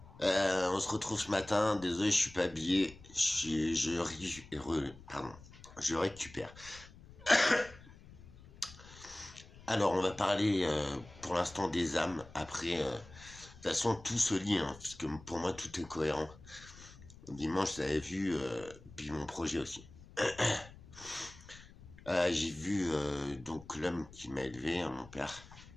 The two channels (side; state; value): left; noise; rumble, 20 dB below the sound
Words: On se retrouve ce matin. Désolé, je suis pas habillé. Pardon. Je récupère. Alors, on va parler pour l'instant des âmes. Après, de toute façon, tout se lie, hein, parce que pour moi, tout est cohérent. Dimanche, j'avais vu, puis mon projet aussi. J'ai vu donc l'homme qui m'a élevé, hein, mon père.